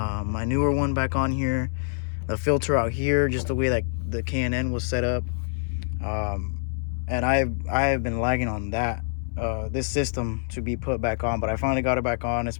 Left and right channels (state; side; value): silent; right; 61 dB below the other